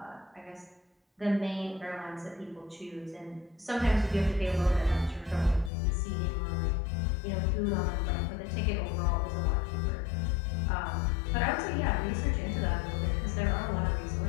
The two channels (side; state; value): right; drops out; at 5.7 s